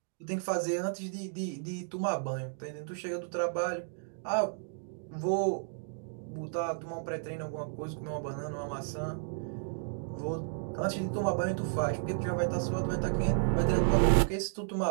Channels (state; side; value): silent; left; digital silence